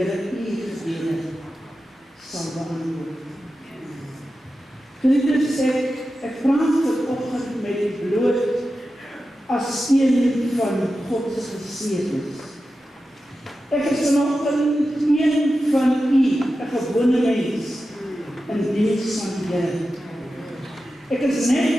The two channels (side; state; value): both; normal; correlation 0.92